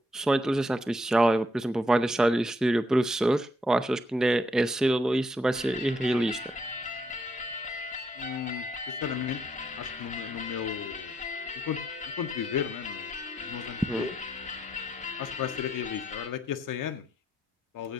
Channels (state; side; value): normal; both; correlation 0.75